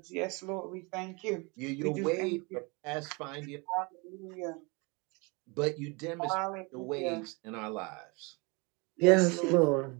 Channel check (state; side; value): quieter; left; 29.0 dB